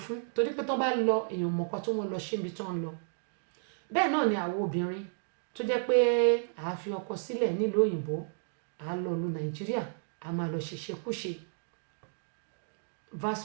fún torí pé tó bá lọ èèyàn mọ̀ọ́kọ́ tó wọ́n lọ ṣé ibi tó ń lọ bẹ́ẹ̀ náà ni àwọn obìnrin tó jẹ́ pé a fi ọkọ sílẹ̀ nílùú òyìnbó a lọ lu Nàìjíríà a máa lọ ṣèṣekúṣe vice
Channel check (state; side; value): silent; left; digital silence